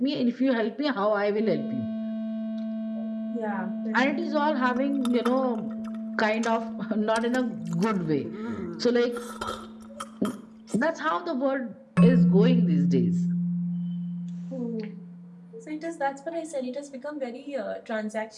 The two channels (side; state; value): both; identical; correlation 1.00